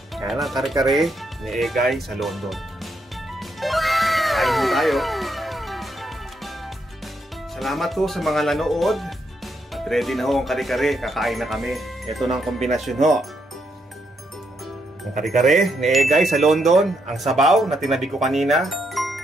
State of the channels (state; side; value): normal; both; correlation 0.78